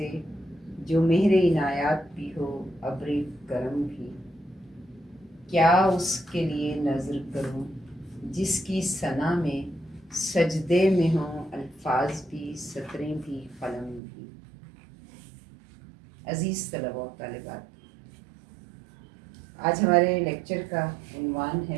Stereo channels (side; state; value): left; drops out; at 14.0 s